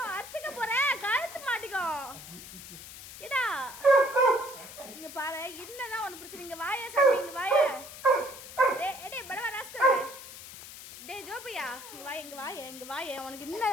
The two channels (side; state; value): left; noise; hiss, 14 dB below the sound